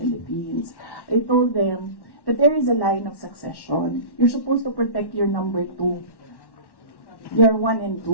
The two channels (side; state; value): right; late; 1.1 ms